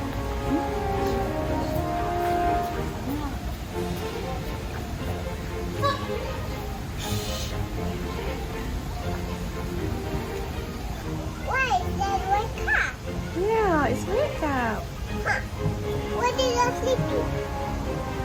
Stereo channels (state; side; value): identical; both; correlation 1.00